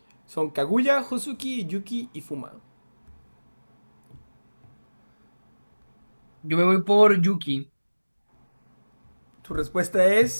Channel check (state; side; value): inverted; both; correlation -1.00